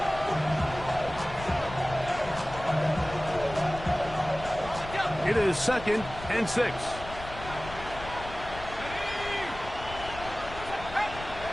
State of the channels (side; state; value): left; noise; rumble, 13 dB below the sound